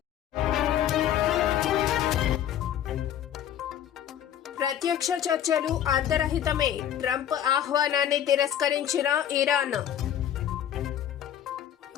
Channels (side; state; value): right; quieter; 10.4 dB